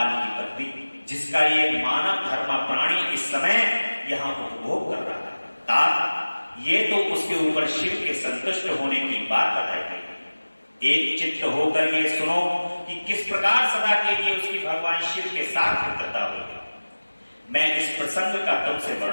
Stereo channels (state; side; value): inverted; both; correlation -1.00